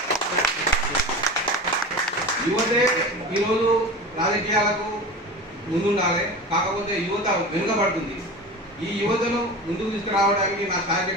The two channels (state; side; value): normal; both; correlation 0.32